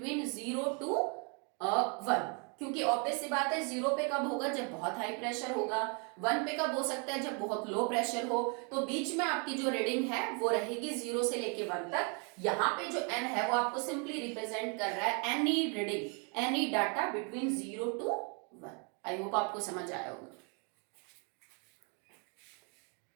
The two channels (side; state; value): left; quieter; 36.1 dB